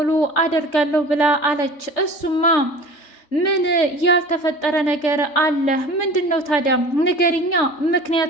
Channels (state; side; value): late; right; 3.3 ms